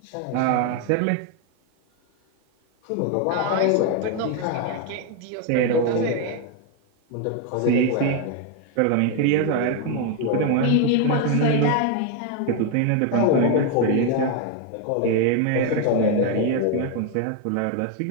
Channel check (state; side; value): different; both; correlation 0.01